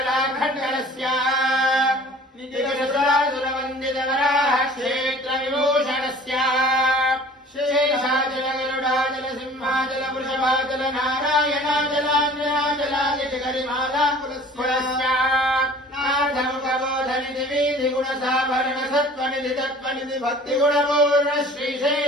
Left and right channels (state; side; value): normal; both; correlation 0.47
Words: नितिगसुरासुरवन्दित वराह क्षेत्र विभूषणस्य शेषाचल गरुडाचल सिंहाचल वृषभाचल नारायणाचलाञ्जनाचलादिति गरिमाला कुलस्य नाथमुखबोधनिधि वीधि गुणसाभरण सत्त्वनिधि तत्त्वनिधि भक्तिगुणपूर्ण